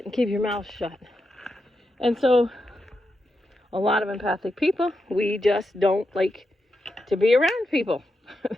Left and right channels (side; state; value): both; normal; correlation 0.86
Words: and keep your mouth shut. And so a lot of empathic people, we just don't like to be around people